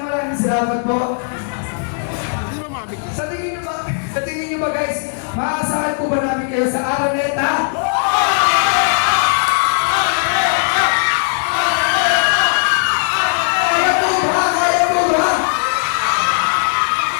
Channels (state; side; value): silent; right; 68 dB below the other